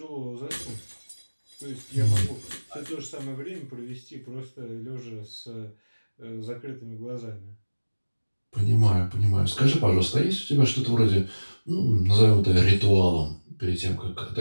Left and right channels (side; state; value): both; inverted; correlation -1.00